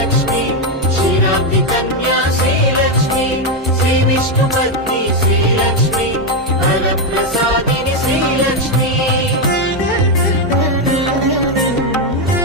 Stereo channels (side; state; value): both; normal; correlation 0.05